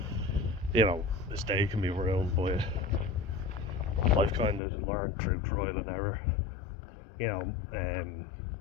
his day can be ruined by it. I've kind of learned through trial and error,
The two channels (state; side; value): drops out; right; at 4.6 s